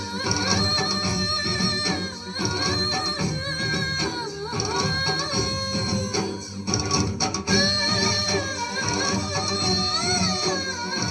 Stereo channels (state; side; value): identical; both; correlation 1.00